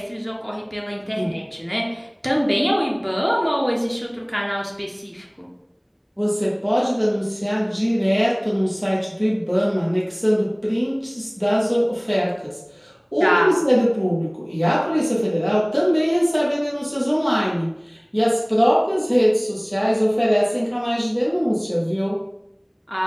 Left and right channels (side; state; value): both; identical; correlation 1.00